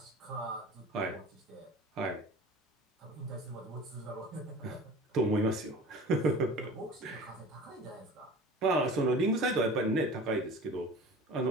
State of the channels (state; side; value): normal; both; correlation 0.40